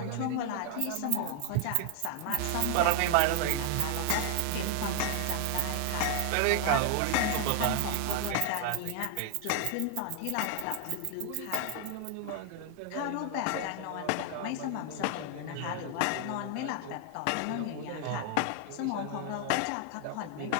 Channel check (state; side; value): different; both; correlation 0.00